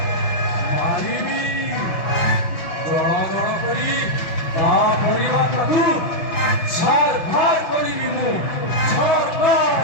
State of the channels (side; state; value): right; late; 5.8 ms